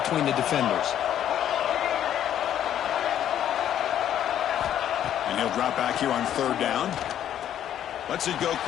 the defenders. And he'll drop back here on third down. Lets it go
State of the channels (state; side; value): quieter; right; 10.6 dB